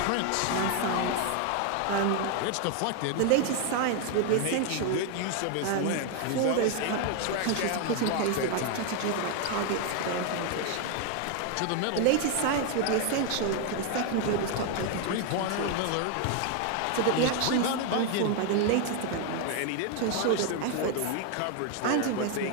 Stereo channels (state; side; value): different; both; correlation 0.00